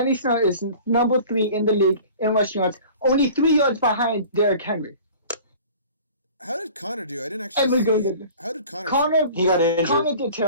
Snell is number 3 in the league in rushing yards, only 3 yards behind Derrick Henry. How did Connor do? I didn't actually see it. How did Connor? He got injured. Connor did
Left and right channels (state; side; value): inverted; both; correlation -0.44